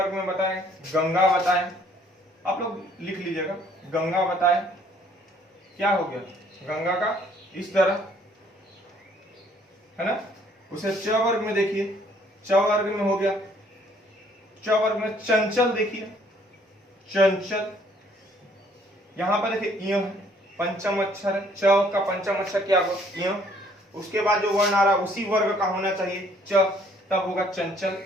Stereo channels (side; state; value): both; normal; correlation 0.62